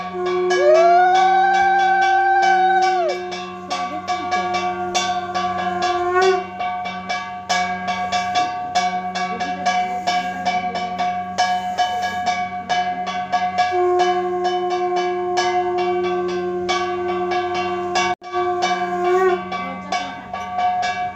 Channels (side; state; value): both; identical; correlation 1.00